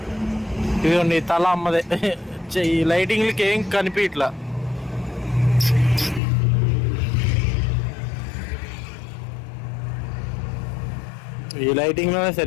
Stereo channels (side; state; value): right; drops out; at 6.2 s